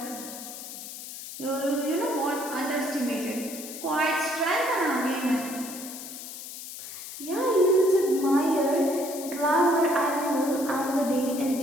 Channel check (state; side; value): noise; left; hiss, 11 dB below the sound